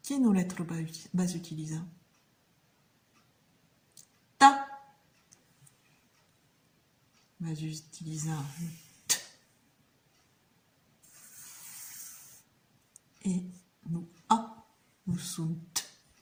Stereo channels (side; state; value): both; identical; correlation 1.00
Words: Quelle lettre vas utiliser? Ta. Vas utiliser t. Et nous a. Nous sommes t.